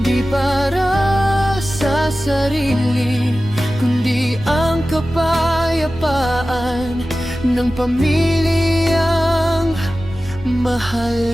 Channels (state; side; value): noise; right; rumble, 16 dB below the sound